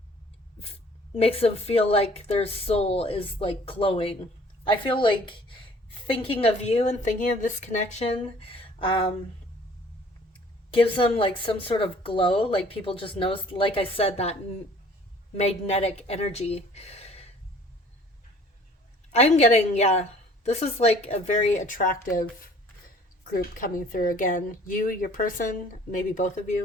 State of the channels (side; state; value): both; normal; correlation 0.54